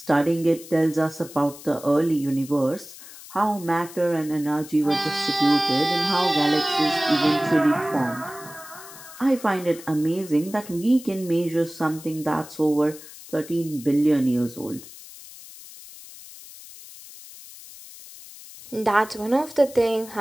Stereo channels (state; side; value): noise; left; hiss, 17 dB below the sound